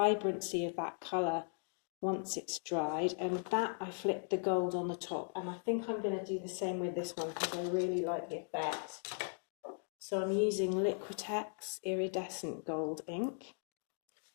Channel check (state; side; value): silent; right; 52 dB below the other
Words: of that colour once it's dried. And that, I flicked the gold on the top, and I think I'm going to do the same with this one because I really like the effect. So I'm using Liquitex iridescent gold ink,